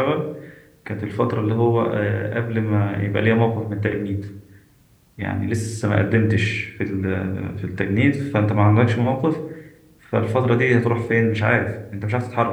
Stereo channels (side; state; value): both; identical; correlation 1.00